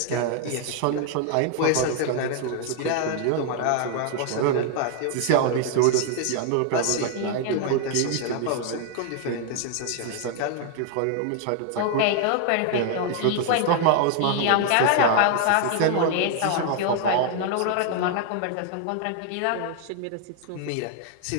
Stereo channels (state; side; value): different; both; correlation 0.00